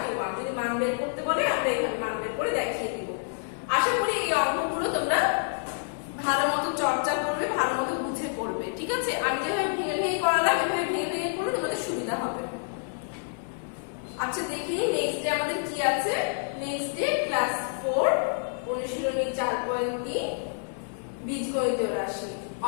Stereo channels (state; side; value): silent; right; 59 dB below the other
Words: যদি মান বের করতে বলে আমরা এখানে মান বের করে দেখিয়ে দিব আশা করি এই অঙ্কগুলো তোমরা ভালোমতো চর্চা করবে ভালোমতো বুঝে করবে ঠিক আছে আমি যেভাবে ভেঙে ভেঙে করালাম এভাবে ভেঙে ভেঙে করলে তোমাদের সুবিধা হবে আচ্ছা দেখি নেক্সট ডে আমাদের কি আছে নেক্সট ডে ক্লাস 4 অনুশীলনী 4.3 বীজগণিতীয় রাশি